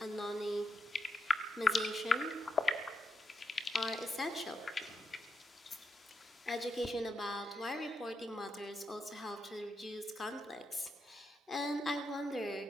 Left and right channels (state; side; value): normal; both; correlation 0.84